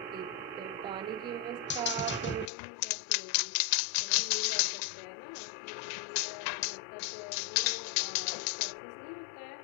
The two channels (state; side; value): drops out; right; at 2.5 s